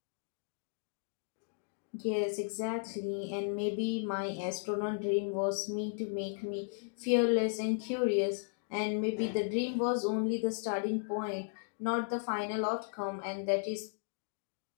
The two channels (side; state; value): right; silent; digital silence